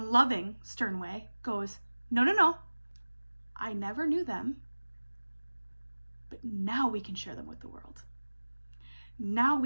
loving stern way goes, No. I never knew them. But now we can share them with the world. Now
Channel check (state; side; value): inverted; both; correlation -1.00